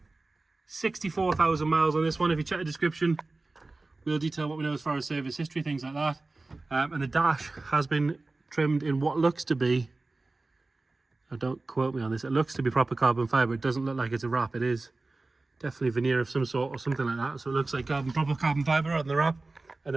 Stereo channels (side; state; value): left; quieter; 3.3 dB